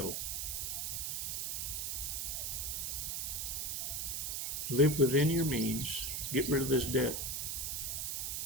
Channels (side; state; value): right; noise; hiss, 1 dB below the sound